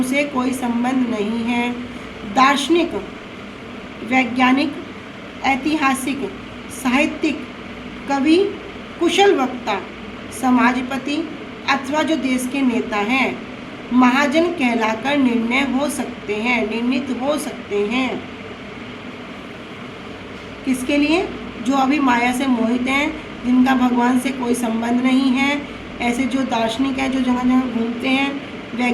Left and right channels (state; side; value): identical; both; correlation 1.00